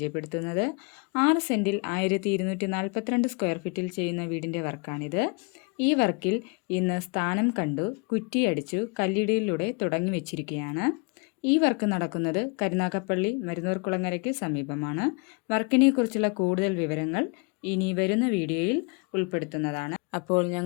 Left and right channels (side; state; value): right; quieter; 32.2 dB